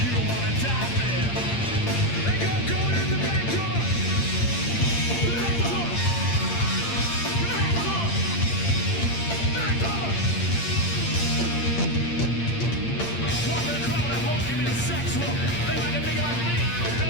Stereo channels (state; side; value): late; right; 8.7 ms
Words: don't wanna die there. They got going in the back door. Back door. Back door. Back door. Walk in the crowd and hope give me the sex look. They like a nigga like me, no